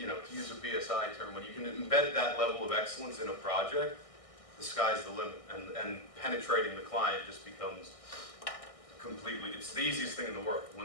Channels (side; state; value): right; late; 1.6 ms